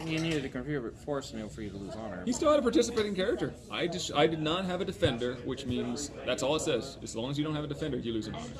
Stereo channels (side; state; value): both; identical; correlation 1.00